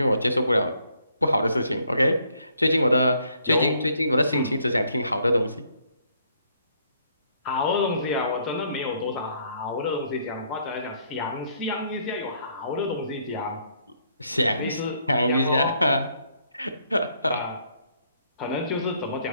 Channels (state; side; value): inverted; both; correlation -0.68